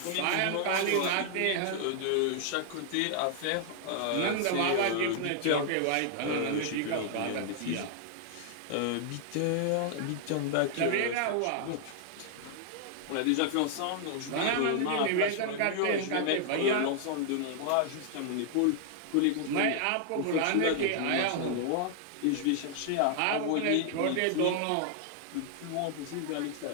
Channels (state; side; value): different; both; correlation 0.00